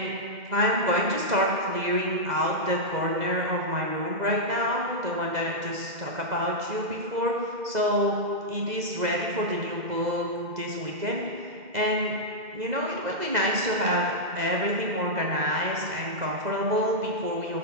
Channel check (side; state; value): left; late; 2.0 ms